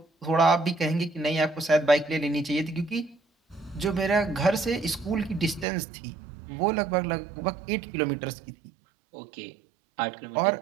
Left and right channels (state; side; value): drops out; left; at 5.7 s